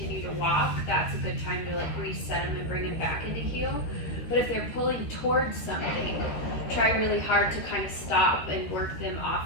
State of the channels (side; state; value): right; late; 13 ms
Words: to walk. That's a good time to like reset them and bring them back into heel. But if they're pulling towards something, try really hard to kind of stop and work them